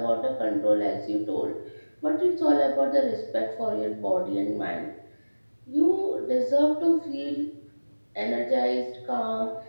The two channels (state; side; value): inverted; both; correlation -1.00